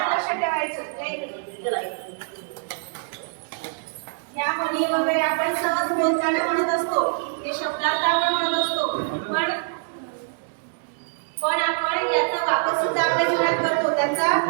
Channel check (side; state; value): left; silent; digital silence